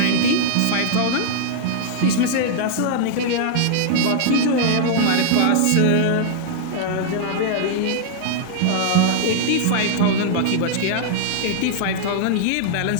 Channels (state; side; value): different; both; correlation -0.01